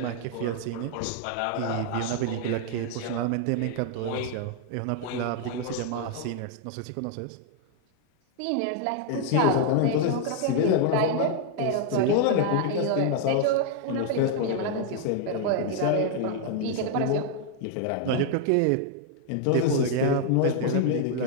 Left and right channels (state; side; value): different; both; correlation 0.00